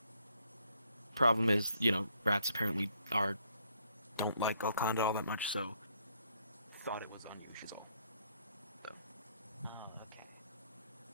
Problem is, you know, rats apparently don't like Golconda all that much, so thought it was unusual. So. Oh,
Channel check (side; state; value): both; inverted; correlation -0.69